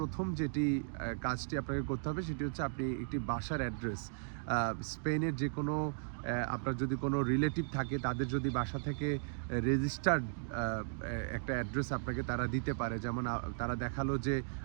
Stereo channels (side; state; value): left; silent; digital silence